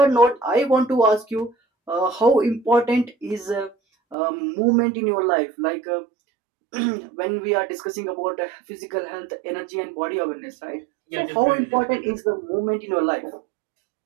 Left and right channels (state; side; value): drops out; left; at 4.2 s